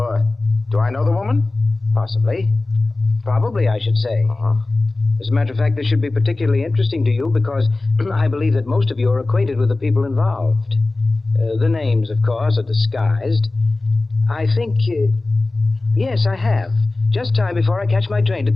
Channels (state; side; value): quieter; right; 3.2 dB